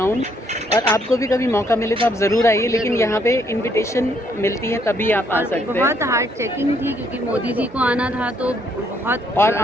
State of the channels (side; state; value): both; normal; correlation 0.70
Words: और आपको भी कभी मौका मिले तो आप ज़रूर आइए, लेकिन यहाँ पे इनविटेशन मिलती है तभी आप आ सकते हैं। बहुत हार्ड चेकिंग थी क्योंकि मोदी जी को आना था, तो बहुत। और